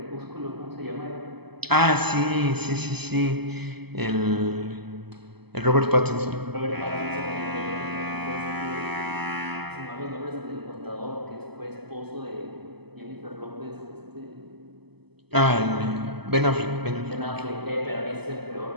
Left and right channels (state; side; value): late; left; 0.98 ms